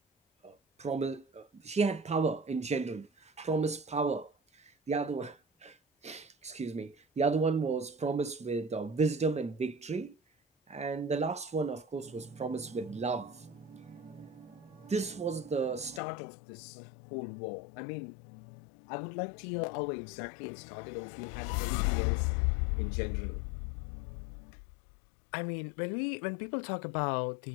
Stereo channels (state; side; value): drops out; right; at 16.0 s